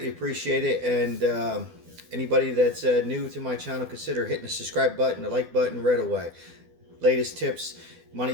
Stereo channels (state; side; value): late; left; 12 ms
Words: appreciate it. And anybody that's new to my channel, consider hitting the subscribe button, the like button right away. Latest tips,